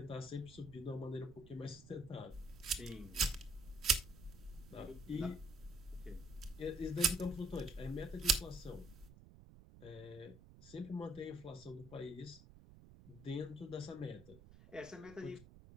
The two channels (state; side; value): noise; right; rumble, 18 dB below the sound